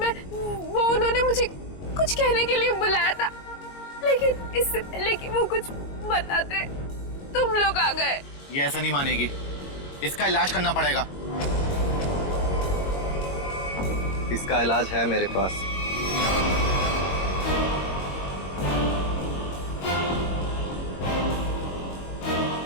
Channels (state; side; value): late; right; 22 ms